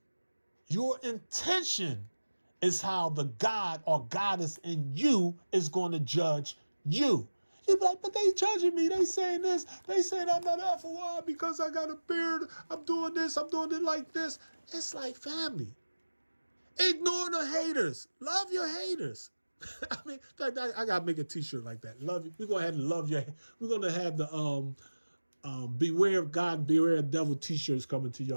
your intention is how the God or goddess in you is going to judge you. You be like, but they judging me. They saying this. They saying I'm not FOI because I got a beard. I'm doing this. I'm doing it like this. It's like, family. Ignore the haters. Love your haters. I mean, in fact, I got to make a t-shirt like that. Love you. We're going to have to love your. We're going to have the beware of God, beware of devil t-shirts coming to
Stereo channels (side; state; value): both; inverted; correlation -1.00